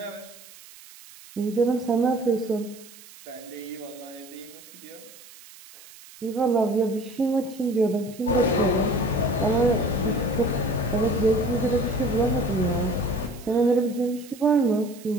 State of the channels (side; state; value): right; noise; hiss, 20 dB below the sound